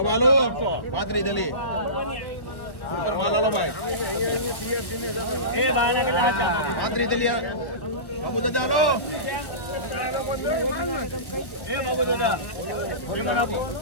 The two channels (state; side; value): late; right; 1.3 ms